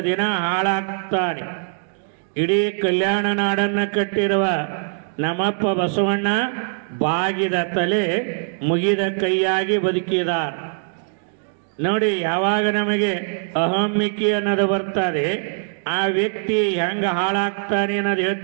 ದಿನ ಹಾಳಾಗ್ತಾನೆ. ಇಡೀ ಕಲ್ಯಾಣ ನಾಡನ್ನು ಕಟ್ಟಿರುವ ನಮ್ಮಪ್ಪ ಬಸವಣ್ಣ ಬಾಗಿದ ತಲೆ ಮುಗಿದ ಕೈಯಾಗಿ ಬದುಕಿದಾರ. ನೋಡಿ, ಯಾವಾಗ ನಮಗೆ ಅಹಮ್ಮಿಕೆ ಅನ್ನೋದು ಬರ್ತದೆ, ಆ ವ್ಯಕ್ತಿ ಹೆಂಗೆ ಹಾಳಾಗ್ತಾನೆ ಅನ್ನೋದು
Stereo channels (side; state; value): left; silent; digital silence